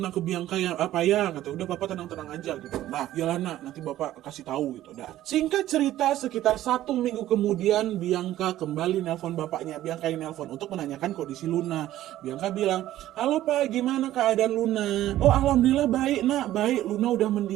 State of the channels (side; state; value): left; quieter; 13.8 dB